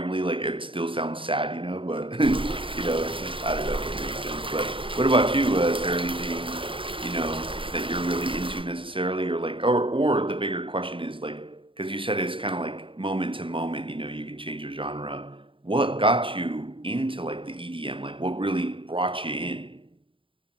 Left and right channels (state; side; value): late; left; 0.25 ms